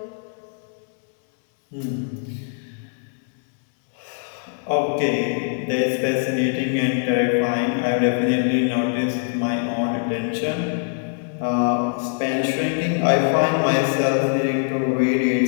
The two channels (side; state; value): right; silent; digital silence